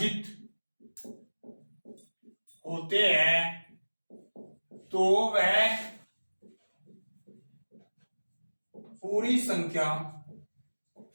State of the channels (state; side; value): inverted; both; correlation -1.00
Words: होते हैं तो वह पूरी संख्या